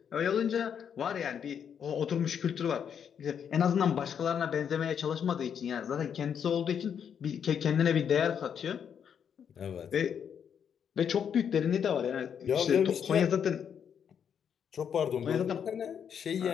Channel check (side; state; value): right; quieter; 7.9 dB